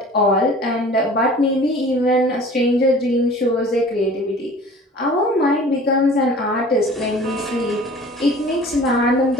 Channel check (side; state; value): both; normal; correlation 0.45